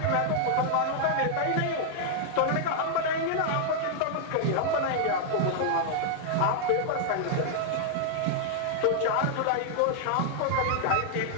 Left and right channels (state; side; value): different; both; correlation -0.01